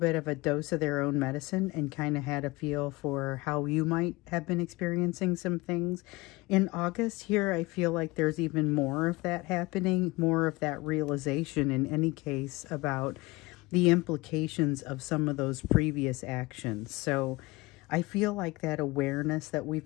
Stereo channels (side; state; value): right; quieter; 22.2 dB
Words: of a dose of their own medicine and kind of had a feel for how you might have been experiencing some things. In August here, I feel like there's even more of that happening, more of that realization in any case about the implications of some of those previous actions. So I feel like that awareness that